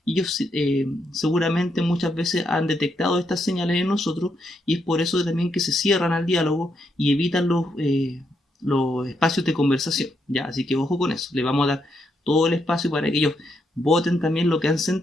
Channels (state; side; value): normal; both; correlation 0.79